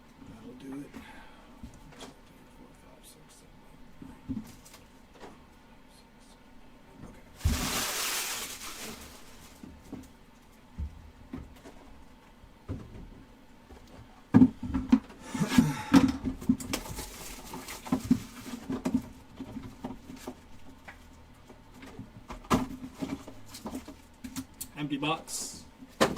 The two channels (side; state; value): both; identical; correlation 1.00